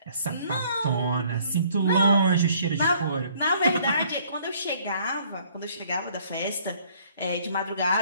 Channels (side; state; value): both; inverted; correlation -0.60